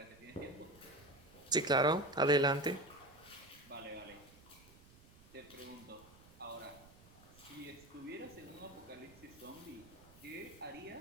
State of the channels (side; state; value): right; noise; rumble, 23 dB below the sound